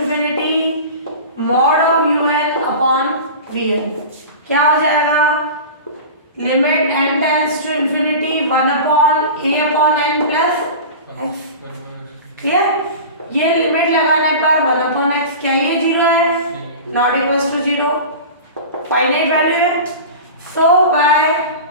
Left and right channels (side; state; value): both; inverted; correlation -0.33